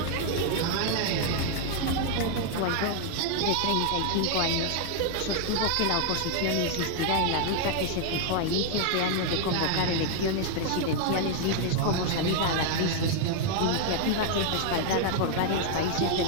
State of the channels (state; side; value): different; both; correlation 0.00